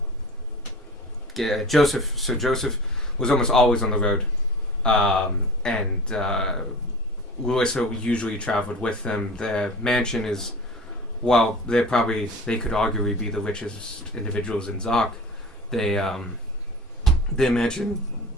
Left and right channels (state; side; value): normal; both; correlation 0.38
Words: Sir Joseph was almost always on the road. And Louisa usually traveled with them. Their mansion is, while they could arguably be the richest individuals in Zoc, their mansion,